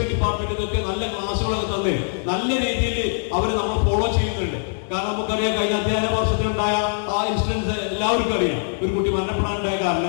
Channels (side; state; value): right; silent; digital silence